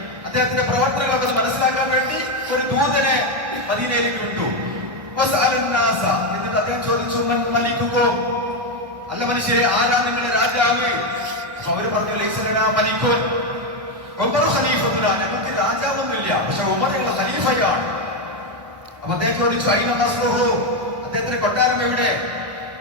അദ്ദേഹത്തിന്റെ പ്രവർത്തനങ്ങളൊക്കെ മനസ്സിലാക്കാൻ വേണ്ടി ഒരു ദൂതനെ മദീനയിലേക്ക് വിട്ടു. എന്നിട്ട് അദ്ദേഹം ചോദിച്ചു, മലിക്കുമോ, അല്ല മനുഷ്യരെ, ആരാ നിങ്ങളുടെ രാജാവ്? അവര് പറഞ്ഞു, മലിക്കുൻ ഉമർ ഖലീഫത്തുന, ഞങ്ങൾക്ക് രാജാവൊന്നുമില്ല, പക്ഷെ ഉമർ ഞങ്ങളുടെ ഖലീഫയാണ്. അപ്പൊ അദ്ദേഹം ചോദിച്ചു, അയിന ഖസ്റുഹു, അദ്ദേഹത്തിന്റെ കൊട്ടാരം എവിടെ?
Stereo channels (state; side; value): late; left; 1.1 ms